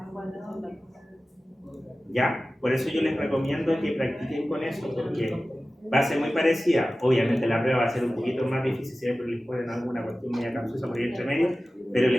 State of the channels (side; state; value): both; normal; correlation 0.96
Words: ¿Ya? Por eso yo les recomiendo que practiquen con eso, porque va a ser muy parecida. Obviamente la prueba va a ser un poquito más difícil, siempre les ponen alguna cuestión media capciosa por ahí entre medio, pero el